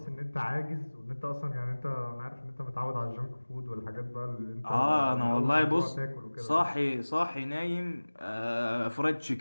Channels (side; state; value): both; inverted; correlation -1.00